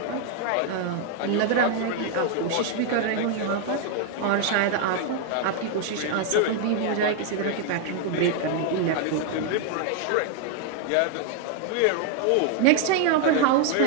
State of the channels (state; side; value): different; both; correlation 0.00